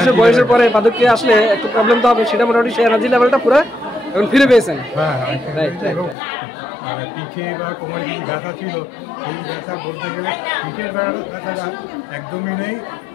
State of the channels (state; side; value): drops out; right; at 6.2 s